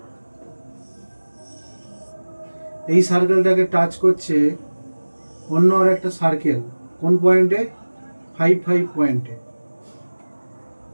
এই সার্কেলটাকে touch করছে অন্য আর একটা circle কোন পয়েন্টে 5 5 পয়েন্টে,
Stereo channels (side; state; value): both; inverted; correlation -1.00